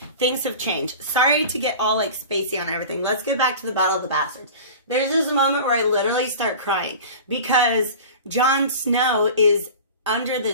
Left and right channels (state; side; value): inverted; both; correlation -0.36